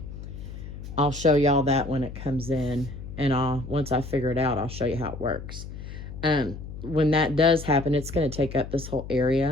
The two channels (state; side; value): noise; left; hum, 11 dB below the sound